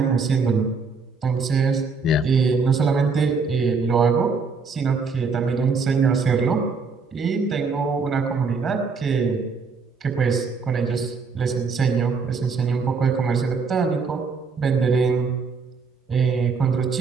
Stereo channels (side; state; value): left; quieter; 4.8 dB